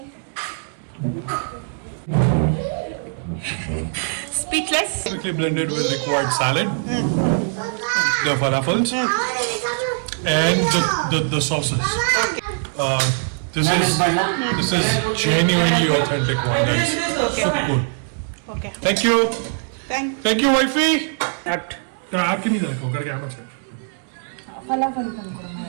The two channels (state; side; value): silent; left; 65 dB below the other